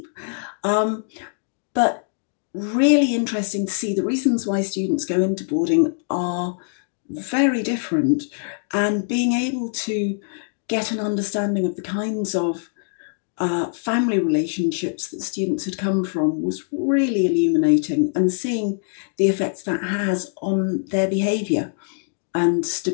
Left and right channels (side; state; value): right; silent; 63 dB below the other